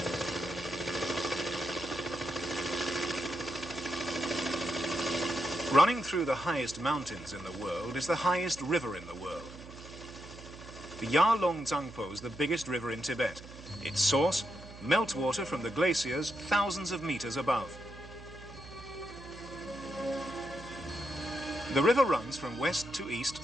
Running through the highest mountains in the world is the highest river in the world. The Yarlong Tsangpo is the biggest river in Tibet. Its source, meltwater from the glaciers thousands of meters above. The river runs from west to east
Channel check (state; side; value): noise; right; hum, 16 dB below the sound